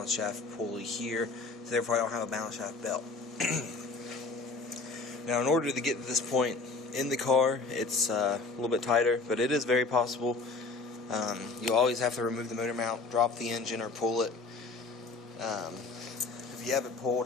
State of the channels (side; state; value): right; quieter; 3.9 dB